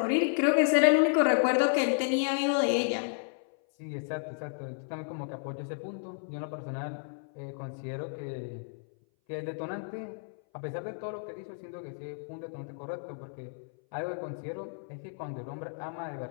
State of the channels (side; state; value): right; silent; 57 dB below the other